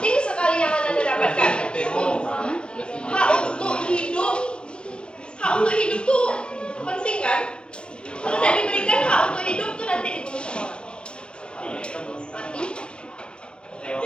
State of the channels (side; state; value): right; late; 0.054 ms